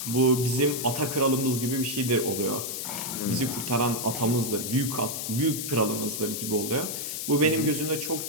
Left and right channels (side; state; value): left; noise; hiss, 4 dB below the sound